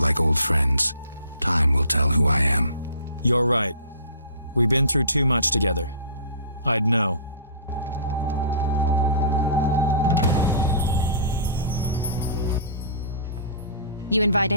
old friends. Time will tell who I am. You're right. We've been through too much together. I'd know. You invite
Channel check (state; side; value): inverted; both; correlation -0.43